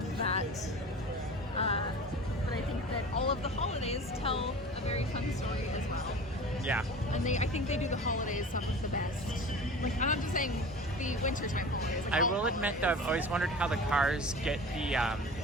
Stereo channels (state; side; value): normal; both; correlation 0.37